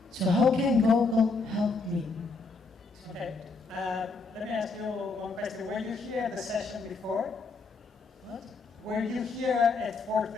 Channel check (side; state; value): right; quieter; 3.9 dB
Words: So how can Google help me? Okay, let me ask you one question. Were you here at the session before? What? Were you here at